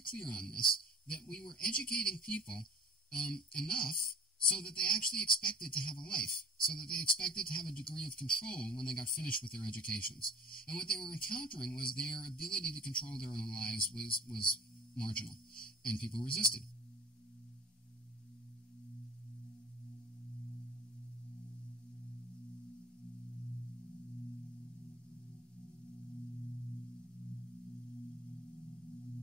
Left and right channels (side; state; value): both; normal; correlation 0.46